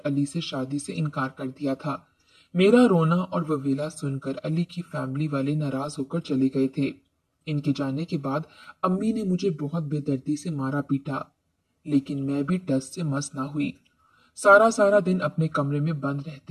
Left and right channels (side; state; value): both; identical; correlation 1.00